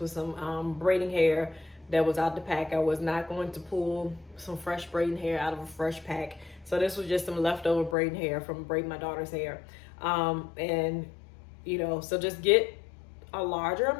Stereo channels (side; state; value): right; drops out; at 8.0 s